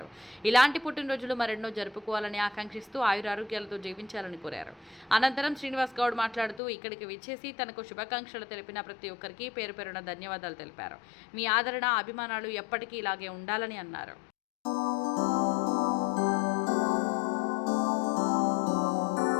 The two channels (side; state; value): right; drops out; at 6.6 s